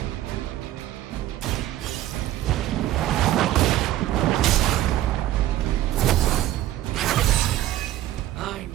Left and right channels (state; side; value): quieter; left; 13.8 dB